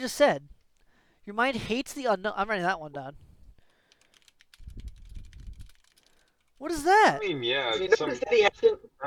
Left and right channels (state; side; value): identical; both; correlation 1.00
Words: said. Your mind hates the unknown. I'm writing that one down. What is that? I mean, yeah. You notice that he hasn't. I